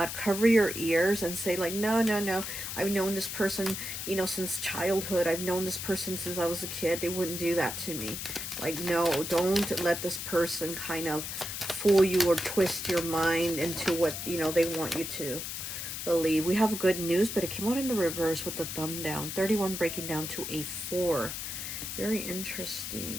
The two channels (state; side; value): noise; left; hiss, 6 dB below the sound